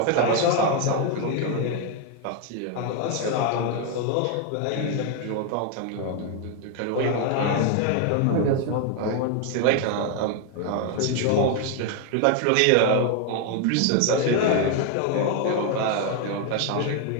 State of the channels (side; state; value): both; different; correlation 0.01